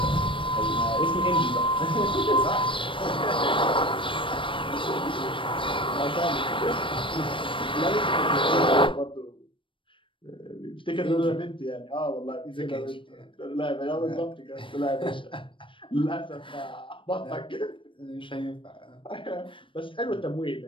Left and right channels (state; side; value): late; right; 0.25 ms